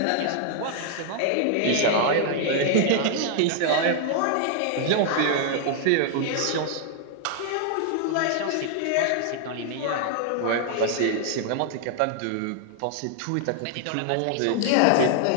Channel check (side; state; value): both; different; correlation 0.00